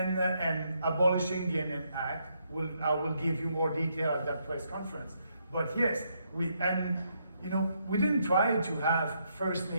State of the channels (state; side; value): inverted; both; correlation -0.76